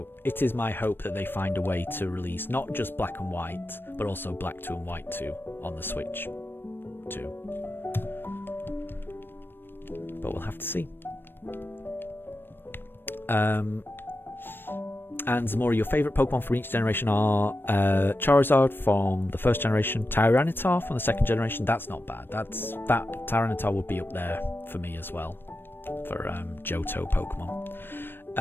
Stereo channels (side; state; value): right; late; 0.098 ms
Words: it is my hope that they find a way to release not just Black and White, but also Black 2 and White 2 on the Switch too. But we'll have to see. And Zamora, your favourite Pokemon from each generation are Charizard from the first generation, Tyranitar from the second generation. That's not bad. That Tyranitar would be up there for me as well, for Johto Pokemon.